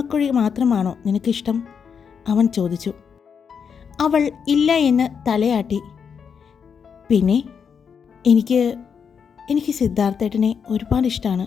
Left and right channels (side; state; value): right; quieter; 6.7 dB